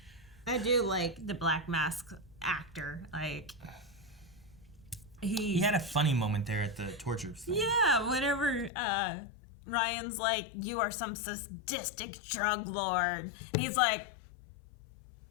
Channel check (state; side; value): drops out; right; at 8.7 s